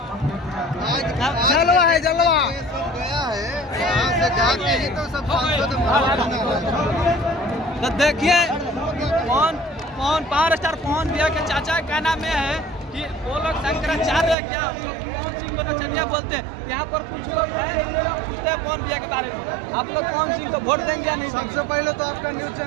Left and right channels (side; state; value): left; drops out; at 14.4 s